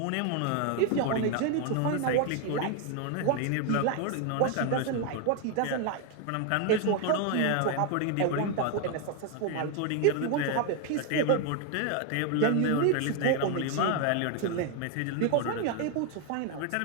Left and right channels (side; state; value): both; different; correlation 0.01